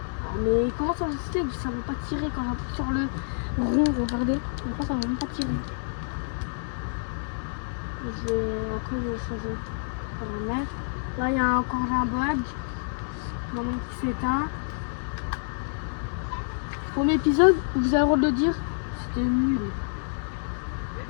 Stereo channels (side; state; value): right; silent; digital silence